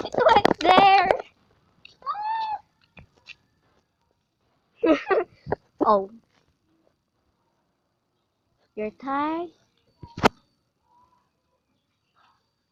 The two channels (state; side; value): identical; both; correlation 1.00